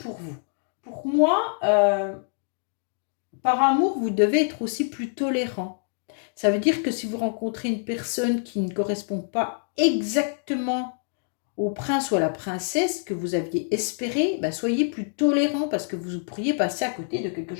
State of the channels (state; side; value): silent; right; digital silence